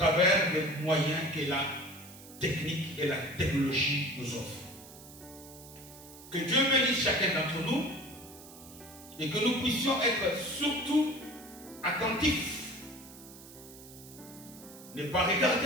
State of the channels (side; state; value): right; noise; hiss, 18 dB below the sound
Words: des moyens que la technique et la technologie nous offrent. Que Dieu bénisse chacun d'entre nous et que nous puissions être surtout attentifs. Ne pas